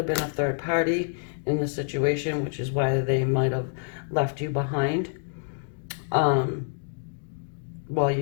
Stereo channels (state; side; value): silent; right; digital silence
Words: been a third party in the situation, which is why they might have left you behind. While